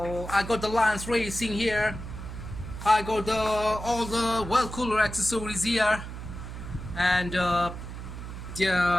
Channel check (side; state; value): right; noise; hum, 9 dB below the sound